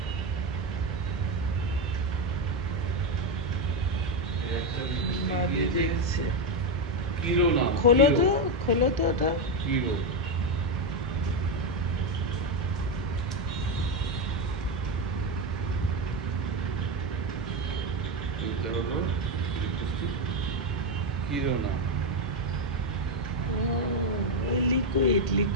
খোলো তো ওটা। কিরো হলো কিরোনা।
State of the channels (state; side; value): normal; both; correlation 0.07